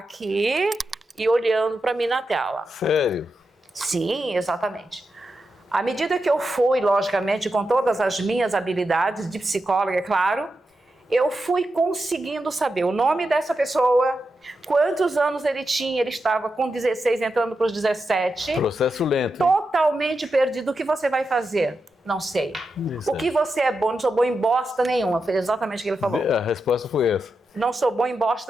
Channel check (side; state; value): both; normal; correlation 0.88